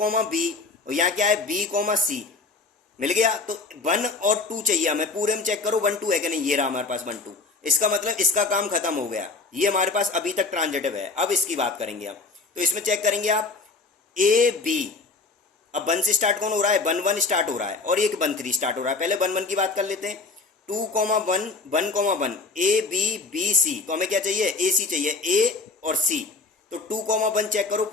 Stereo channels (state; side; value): quieter; right; 3.8 dB